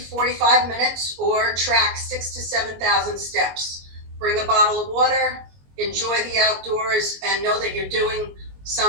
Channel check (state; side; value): late; left; 22 ms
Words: 45 minutes, or track 6,000 to 7,000 steps. Bring a bottle of water, enjoy the outdoors, and know that you're doing